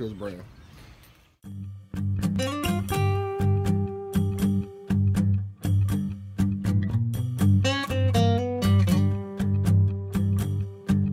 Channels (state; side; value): identical; both; correlation 1.00